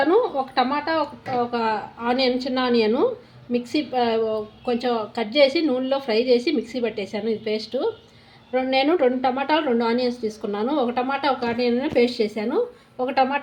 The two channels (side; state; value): both; identical; correlation 1.00